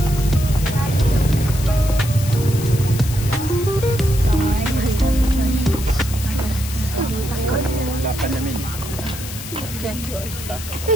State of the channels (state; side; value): noise; left; hiss, 11 dB below the sound